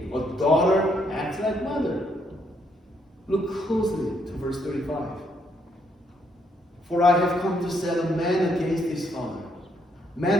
A daughter acts like mother. Look closely to verse 35. For I have come to set a man against his father,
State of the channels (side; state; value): both; normal; correlation 0.73